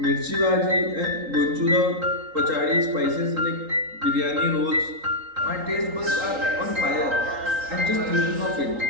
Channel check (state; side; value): late; left; 3.8 ms